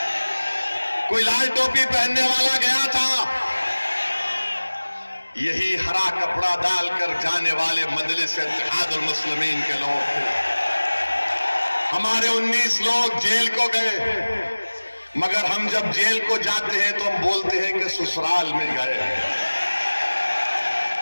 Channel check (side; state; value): both; inverted; correlation -1.00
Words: कोई लाल टोपी पहनने वाला गया था? यही हरा कपड़ा डालकर जाने वाले मजलिस इत्तेहादुल मुस्लिमीन के लोग थे। हमारे 19 लोग जेल को गए, मगर हम जब जेल को जाते हैं तो हम बोलते हैं कि ससुराल में गए।